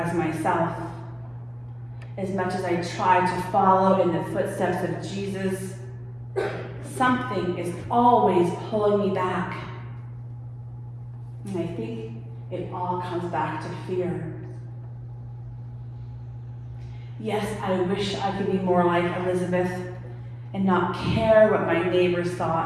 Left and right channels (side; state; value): both; identical; correlation 1.00